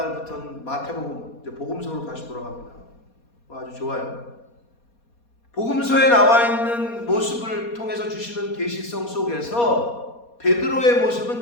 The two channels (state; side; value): late; right; 4.2 ms